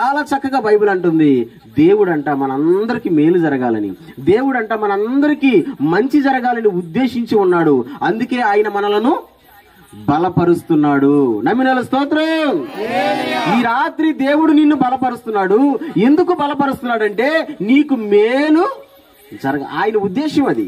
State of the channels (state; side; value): identical; both; correlation 1.00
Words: చక్కగా బైబిల్ అంటుంది, దేవుడంట మనందరికీ మేలు జరగాలని, దేవుడంట మనందరికీ మంచి జరగాలని ఉద్దేశించి ఉన్నాడు. అందుకే ఆయన మనలను బలపరుస్తున్నాడు. నమ్మిన స్తోత్రం. ఈ రాత్రి దేవుడు నిన్ను బలపరుస్తున్నాడు. ఎందుకు బలపరుస్తున్నాడంటే నీకు మేలు ఆయన ఉద్దేశం అది.